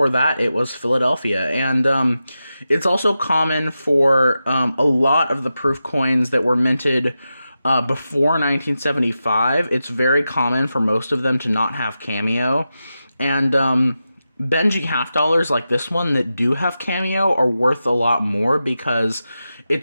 that, it was Philadelphia. And it's also common for a lot of the proof coins that were minted before 1975, it's very common for most of them to not have cameo. And Benji half dollars like this one that do have cameo are worth a lot more because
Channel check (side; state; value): both; inverted; correlation -0.91